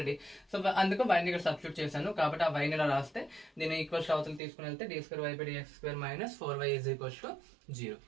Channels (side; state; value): left; drops out; at 4.4 s